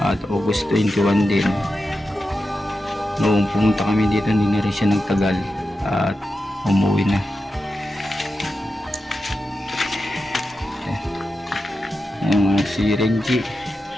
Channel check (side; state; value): both; normal; correlation 0.90